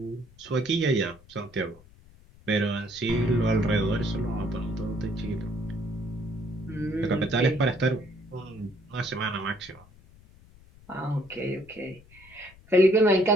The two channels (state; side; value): noise; left; rumble, 25 dB below the sound